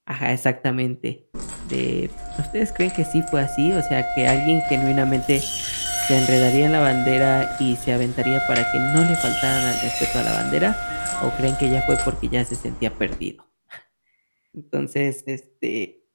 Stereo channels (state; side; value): inverted; both; correlation -1.00